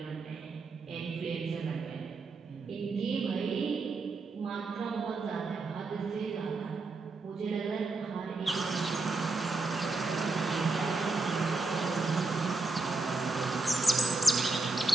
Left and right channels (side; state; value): left; quieter; 3.6 dB